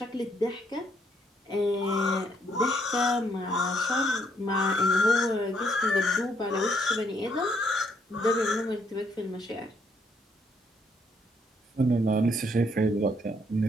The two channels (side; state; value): both; normal; correlation 0.71